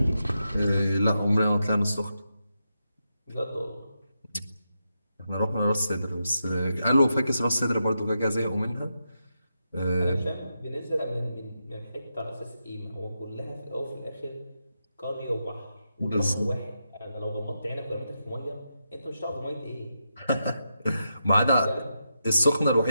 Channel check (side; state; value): both; inverted; correlation -0.86